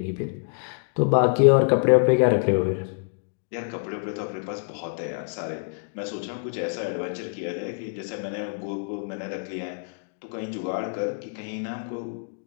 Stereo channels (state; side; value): silent; right; 61 dB below the other